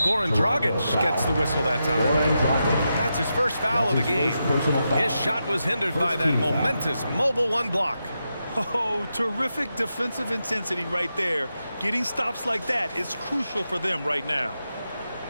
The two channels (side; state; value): both; inverted; correlation -0.87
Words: Dragic gets the whistle that time. That's his first foul of the game. His shot was hindered by that momentous mobile one block. Oh, terrific defensive intensity right there. Getting stops like that is crucial for them right now.